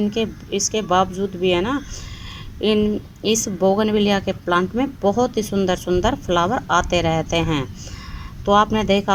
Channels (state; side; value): identical; both; correlation 1.00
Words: इसके बावजूद भी है ना, इस बोगनविलिया के प्लांट में बहुत ही सुंदर सुंदर फ्लावर आते रहते हैं। तो आपने देखा